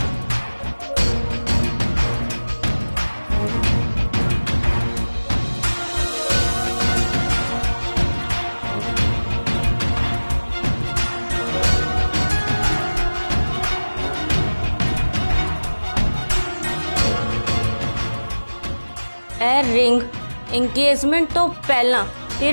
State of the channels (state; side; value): inverted; both; correlation -1.00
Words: रिंग एंगेजमेंट तो पहला